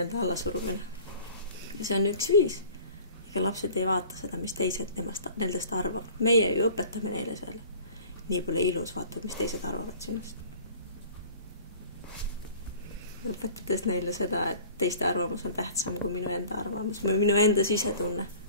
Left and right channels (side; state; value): both; inverted; correlation -0.45